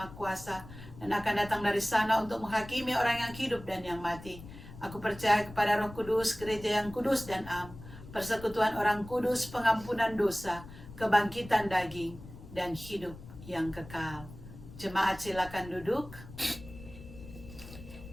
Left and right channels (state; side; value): noise; left; rumble, 15 dB below the sound